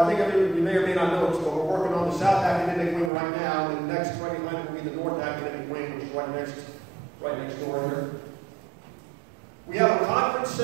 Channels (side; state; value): left; drops out; at 3.1 s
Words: think you may or may not know this, but we're working on the South Academic Wing right now, and the next right behind it will be the North Academic Wing, which is right next door here. We have a conference